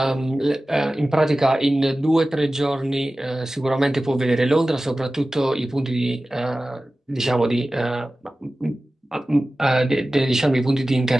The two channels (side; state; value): both; normal; correlation 0.96